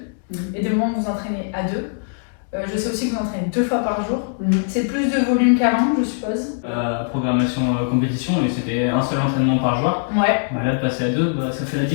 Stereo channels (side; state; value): right; silent; digital silence